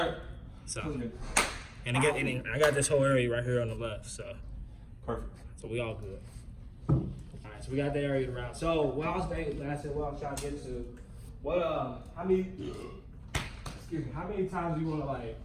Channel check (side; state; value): both; identical; correlation 1.00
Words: So That's good. and I got this whole area right here on the left. So Perfect. we all good. All right, so we got the area around. So what I was trying to get to, how many times do you want to like